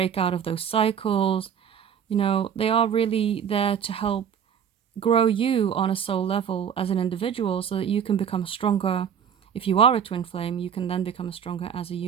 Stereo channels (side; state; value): left; quieter; 8.1 dB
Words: out of those cycles. You know, they are really there to help grow you on a soul level as an individual so that you can become stronger. If you are a twin flame, you can then become stronger as a